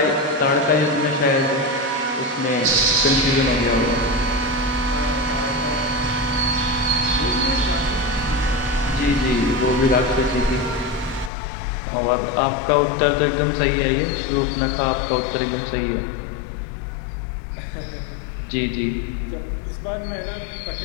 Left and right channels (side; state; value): right; drops out; at 11.3 s